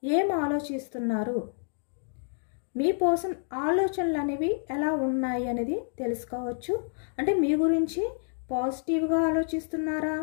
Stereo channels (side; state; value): right; silent; digital silence